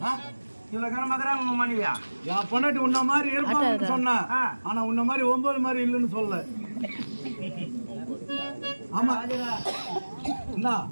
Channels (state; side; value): inverted; both; correlation -1.00